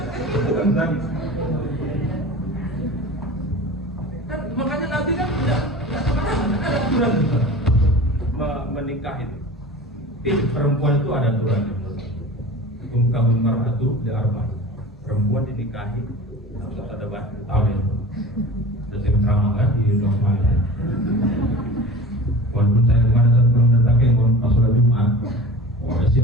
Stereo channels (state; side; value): normal; both; correlation 0.37